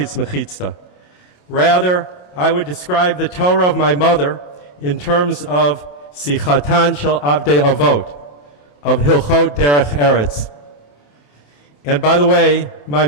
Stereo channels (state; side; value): late; right; 28 ms